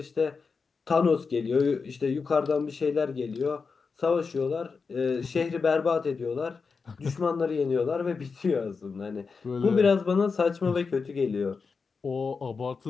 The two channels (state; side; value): quieter; right; 4.9 dB